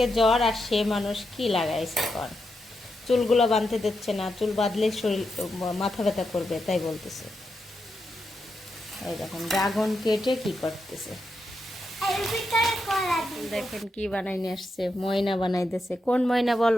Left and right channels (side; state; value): both; normal; correlation 0.85